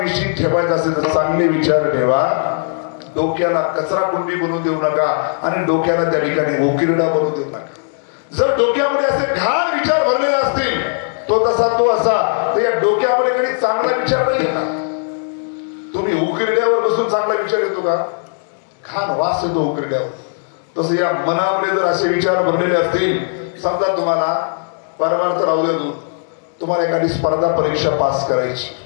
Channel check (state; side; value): silent; right; digital silence